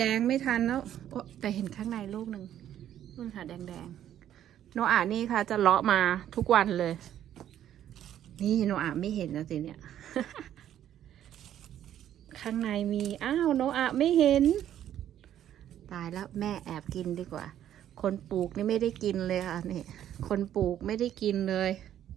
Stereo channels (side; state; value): left; quieter; 11.0 dB